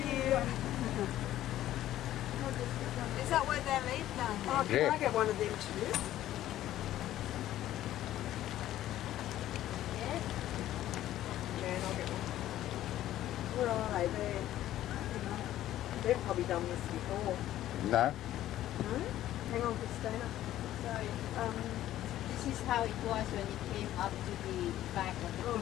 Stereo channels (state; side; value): quieter; right; 13.3 dB